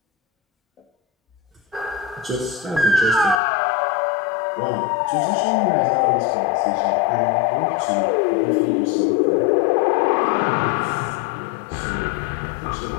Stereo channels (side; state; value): right; drops out; at 3.4 s